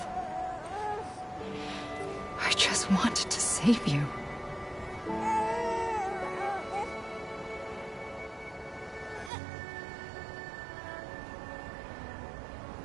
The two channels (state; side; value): drops out; left; at 9.3 s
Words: I just wanted to save you.